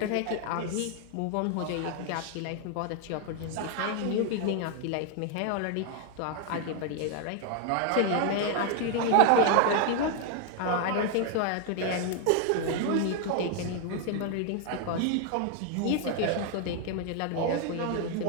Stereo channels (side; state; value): both; different; correlation 0.01